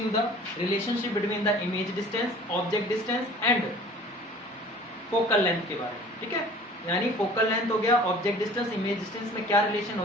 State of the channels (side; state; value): both; normal; correlation 0.47